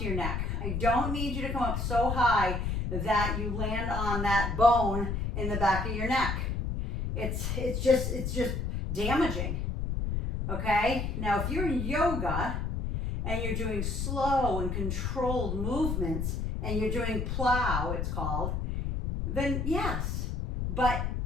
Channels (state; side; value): noise; left; rumble, 1 dB below the sound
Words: your neck. I don't need you to come up so high that you land on that bone in the back of your neck. It's just damaging. Okay, now if you're in yoga and you're doing slow and controlled movements and you're doing plow, it's called, then yes, but